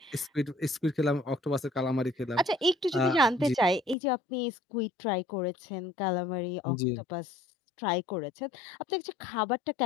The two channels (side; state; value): right; drops out; at 4.0 s